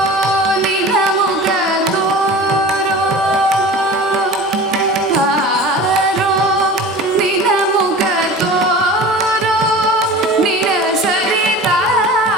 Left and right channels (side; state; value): both; normal; correlation 0.37